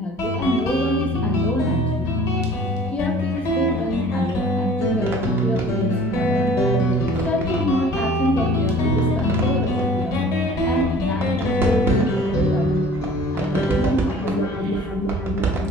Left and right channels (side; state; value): both; normal; correlation 0.49